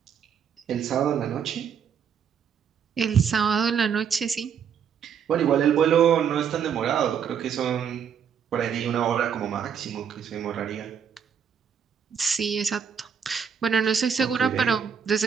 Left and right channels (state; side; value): quieter; left; 7.6 dB